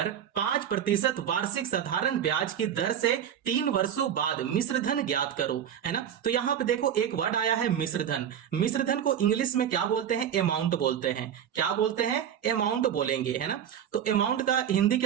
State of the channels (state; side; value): quieter; left; 9.3 dB